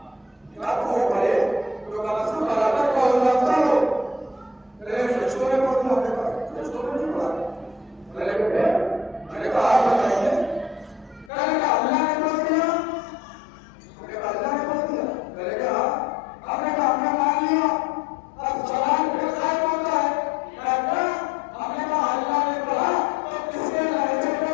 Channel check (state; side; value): drops out; right; at 11.3 s